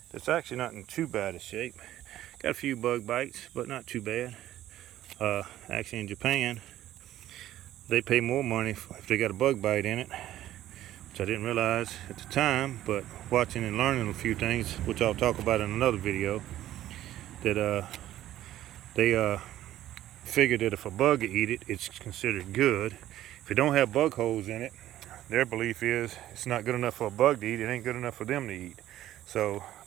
It's actually not in too bad a shape. Got a few bug bites, but not too bad. Actually in Japan, they pay more money if they got a bug bite in it, which I didn't realize at the time, but watching and learning a few things, which I'll talk about in another video, that they figured that if a bug eat it, it's considered good. If it don't have bug holes in it, their belief is it's not good enough for a bug to eat, it ain't good enough for them to eat. So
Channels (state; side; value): quieter; left; 13.4 dB